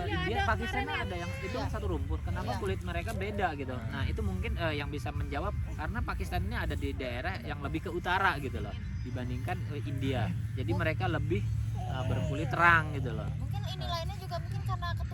India Pakistan ada yang itu kan satu rumpun. Kenapa Iya. kulit mereka beda gitu. Nah, itu mungkin yang bisa menjawab karena Pakistan ini ada di daerah yang lebih ke utara gitu loh dibandingkan India. Jadi mereka lebih berkulit terang gitu loh. Mungkin ini lainnya juga mungkin karena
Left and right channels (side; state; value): both; identical; correlation 1.00